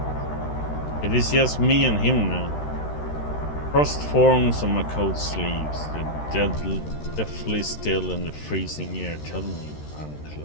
It is just me and him now. Frost forms on my coat sleeves, the deathly still and the freezing air tell me I'm close.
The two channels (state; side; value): late; right; 13 ms